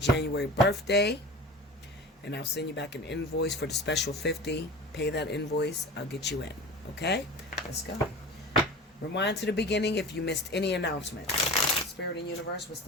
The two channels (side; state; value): both; normal; correlation 0.34